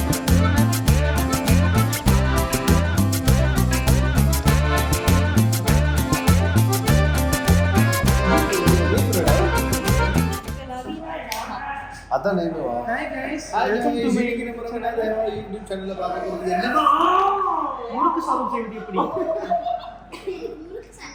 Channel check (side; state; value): both; identical; correlation 1.00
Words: அதான் நேமுவா. Hi guys, welcome to my YouTube சேனல்ல பார்க்க போறது என்னன்னா முறுக்கு சாதம் செய்வது எப்படி?